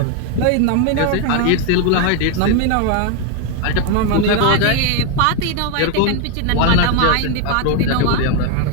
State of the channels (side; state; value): both; different; correlation 0.01